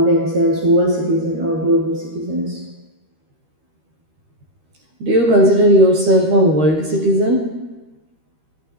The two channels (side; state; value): left; late; 13 ms